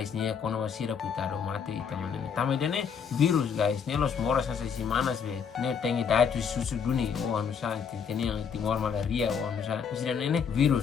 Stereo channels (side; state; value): right; quieter; 6.7 dB